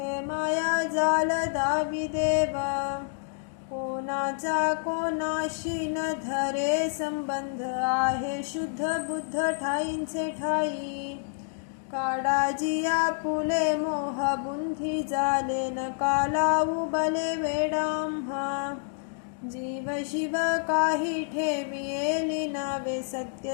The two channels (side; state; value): right; silent; digital silence